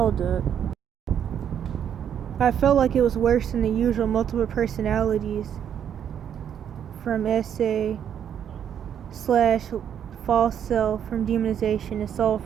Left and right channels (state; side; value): quieter; left; 8.9 dB